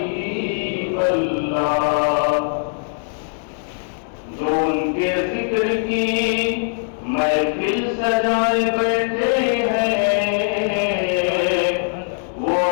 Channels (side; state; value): right; silent; 61 dB below the other